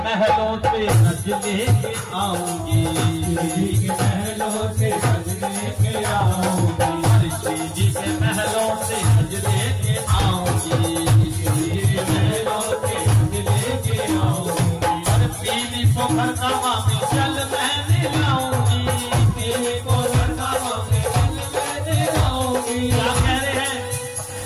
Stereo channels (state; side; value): identical; both; correlation 1.00